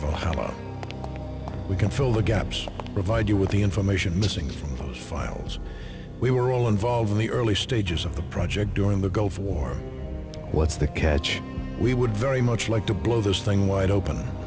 We can fill the gaps, provide you with the information missing from those files. We were all involved in the early stages of the project during the Gulf War. What's the catch? We would very much like to blow this thing wide open,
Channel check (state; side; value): identical; both; correlation 1.00